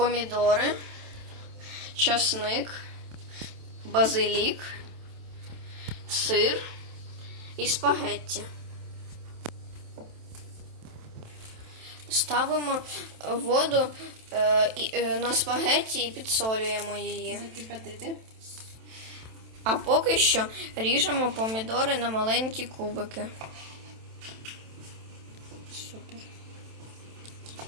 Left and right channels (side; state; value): left; late; 27 ms